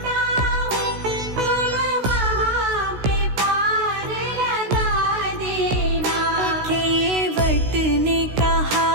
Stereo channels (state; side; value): late; left; 16 ms